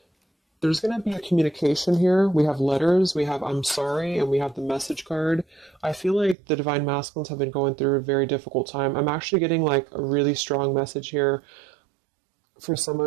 There's going to be a communication here. We have letters, we have I'm sorry, and we have the message card. I feel like the divine masculines have been going through a very difficult time. I'm actually getting like a really strong message here for some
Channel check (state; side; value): drops out; left; at 6.4 s